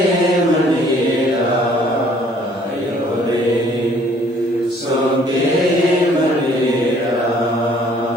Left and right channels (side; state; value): both; normal; correlation 0.59